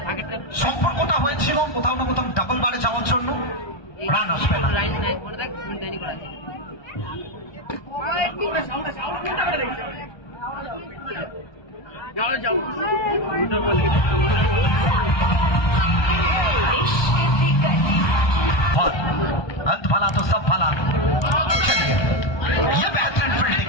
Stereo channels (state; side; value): late; right; 1.2 ms